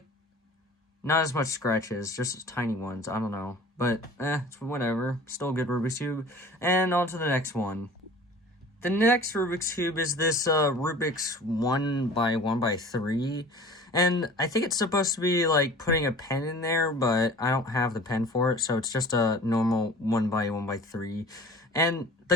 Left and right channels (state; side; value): normal; both; correlation 0.44